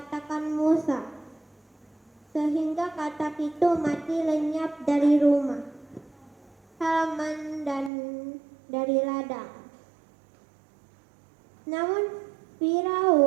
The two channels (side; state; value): left; drops out; at 7.9 s